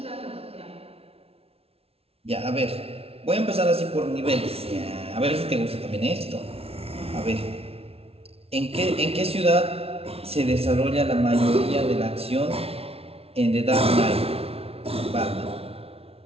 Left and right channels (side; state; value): left; late; 0.29 ms